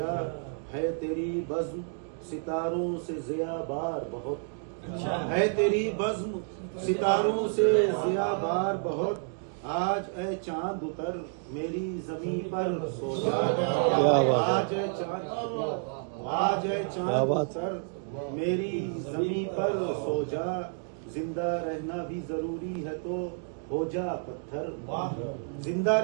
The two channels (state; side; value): silent; left; 58 dB below the other